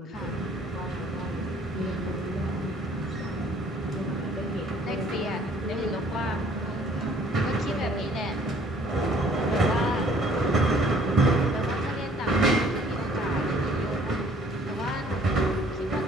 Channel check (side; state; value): both; normal; correlation 0.57